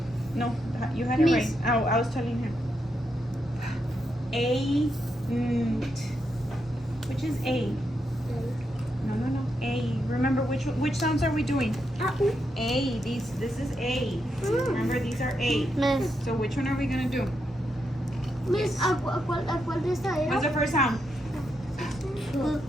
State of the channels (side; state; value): both; normal; correlation 0.82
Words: No, you had it right. Miss. I was telling him. A. Which is A? No. A. Remember which sounds are we doing? A. This is A. Remember these are A. Miss. So which one are we gonna do? Miss, ¿a cuál de esta era? What's the first sound?